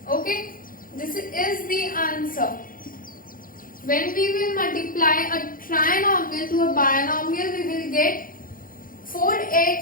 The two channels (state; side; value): late; right; 0.41 ms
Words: Okay, this is the answer. When we will multiply a trinomial to a binomial, we will get